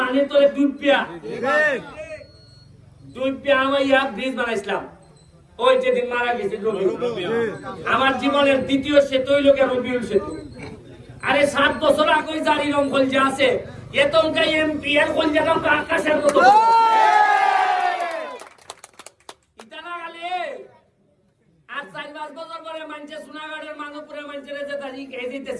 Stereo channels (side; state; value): both; identical; correlation 1.00